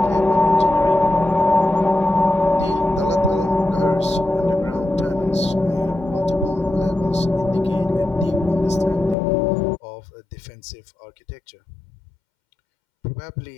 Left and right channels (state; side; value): drops out; right; at 9.2 s